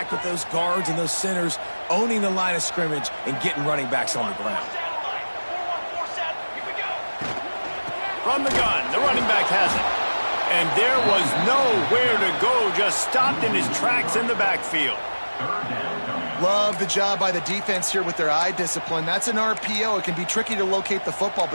with those guards and those centers, owning the line of scrimmage, and getting running backs on the ground. From the gun, the running back has it. And there was nowhere to go, just stopped in his tracks in the backfield. Love the job by the defense here with their eye discipline. That's an RPO. It can be tricky to locate the football,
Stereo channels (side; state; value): both; inverted; correlation -1.00